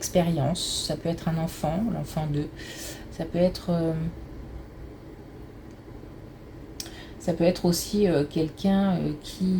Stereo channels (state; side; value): identical; both; correlation 1.00